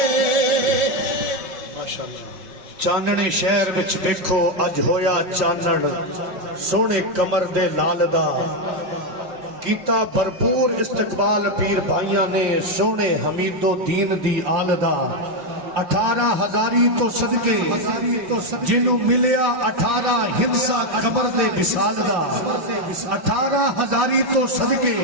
چاننے شہر وچ دیکھو اج ہویا چانن سونے کمر دے لال دا کیتا بھرپور استقبال پیر بھائیاں نے سونے حمید و دین دی آل دا 18,000 تو صدقے جنوں ملیا 18 ہندسا قبر دے وصال دا 18,000 تو صدقے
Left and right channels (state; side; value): late; left; 5.6 ms